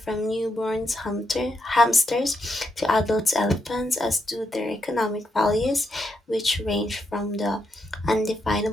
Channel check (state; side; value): normal; both; correlation 0.81